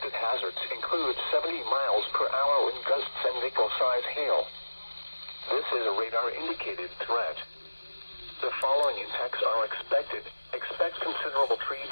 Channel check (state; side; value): inverted; both; correlation -1.00